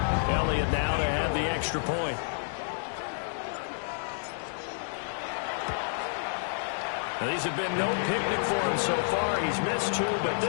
Elliott now to have the extra point. Now, these have been no picnic for him so far. He's missed 2, but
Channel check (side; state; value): right; silent; digital silence